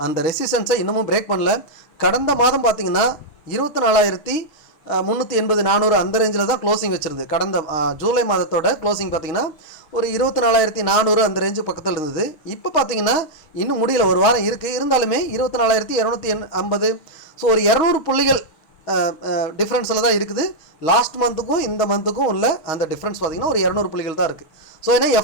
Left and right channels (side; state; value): right; late; 6.4 ms